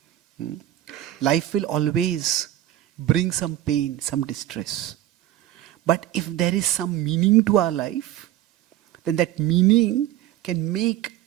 Life will always bring some pain, some distress. But if there is some meaning to our life, then that meaning can make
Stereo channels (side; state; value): left; quieter; 13.2 dB